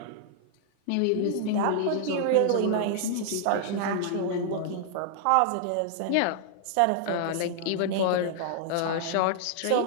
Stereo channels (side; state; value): both; different; correlation 0.00